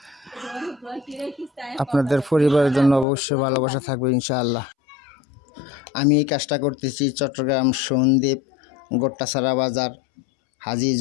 আপনাদের পরিবারের জন্য অবশ্যই ভালোবাসা থাকবে ইনশাআল্লাহ। আমি এই কাজটা করতেছি চট্টগ্রাম সন্দ্বীপ গোট্টাছড়া বাজার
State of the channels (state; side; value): drops out; right; at 3.1 s